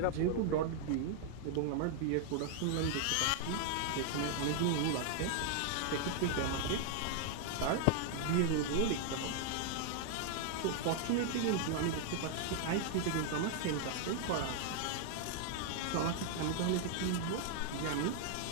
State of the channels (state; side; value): different; both; correlation 0.00